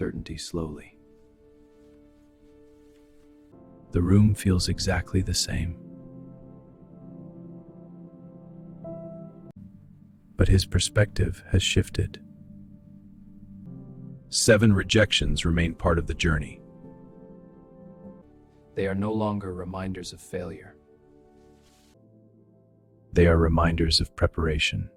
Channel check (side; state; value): both; identical; correlation 1.00